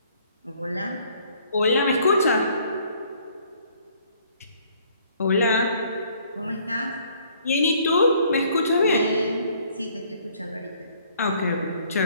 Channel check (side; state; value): both; inverted; correlation -0.61